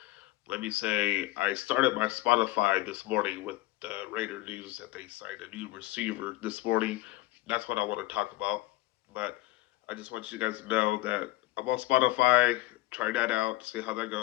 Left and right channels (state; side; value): quieter; right; 18.2 dB